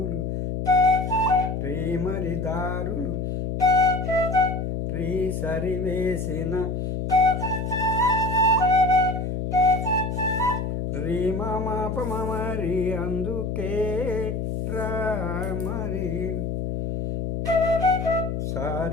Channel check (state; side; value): noise; left; hum, 2 dB below the sound